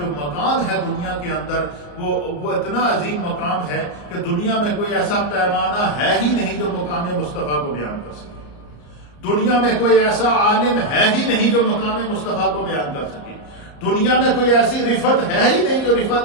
مقام ہے دنیا کے اندر وہ اتنا عظیم مقام ہے کہ دنیا میں کوئی ایسا پیمانہ ہے ہی نہیں جو مقام مصطفیٰ کو بیان کر سکے. دنیا میں کوئی ایسا عالم ہے ہی نہیں جو مقام مصطفیٰ کو بیان کر سکے. دنیا میں کوئی ایسی رفت ہے ہی نہیں جو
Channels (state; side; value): late; right; 34 ms